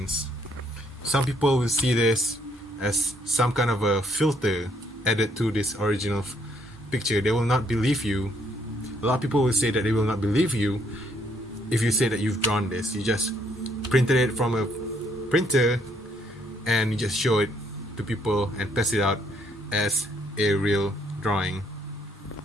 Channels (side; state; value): both; normal; correlation 0.69